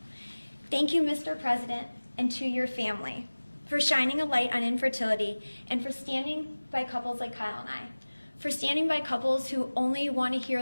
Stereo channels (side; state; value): both; inverted; correlation -1.00